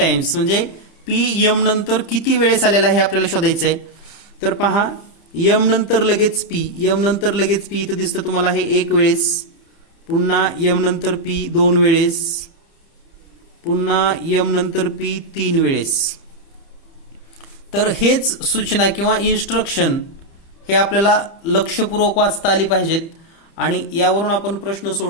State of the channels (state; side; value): late; right; 30 ms